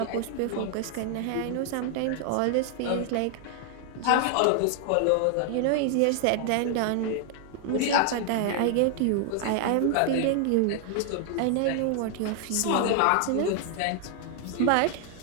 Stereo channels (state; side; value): different; both; correlation 0.00